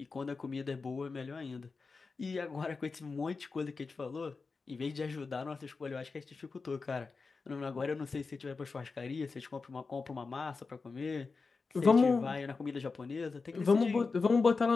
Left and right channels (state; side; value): quieter; right; 4.4 dB